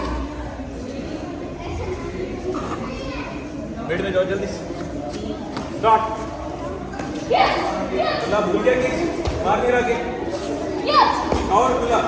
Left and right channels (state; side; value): identical; both; correlation 1.00